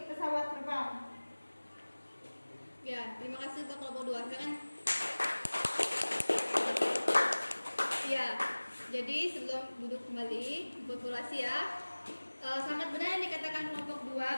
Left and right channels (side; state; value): both; inverted; correlation -1.00